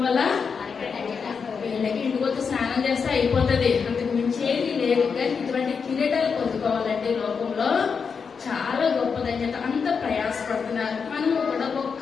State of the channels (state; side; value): quieter; right; 5.8 dB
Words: వల్ల వీళ్ళకి ఇంటికొచ్చి స్నానం చేస్తే అయిపోతుంది, అంతకు మించేది లేదు. కానీ ఇటువంటి కిరీటాలు పొందుకోవాలంటే లోకంలో చాలా గొప్ప ధన్యత. అంత ప్రయాసపడుతున్నారు. మనము కూడా